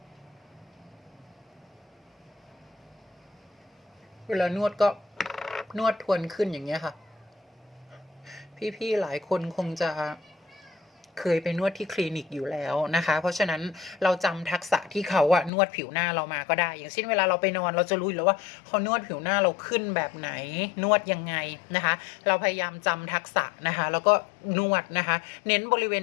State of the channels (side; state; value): right; drops out; at 15.5 s